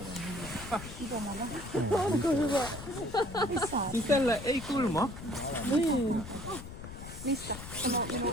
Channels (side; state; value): left; noise; rumble, 11 dB below the sound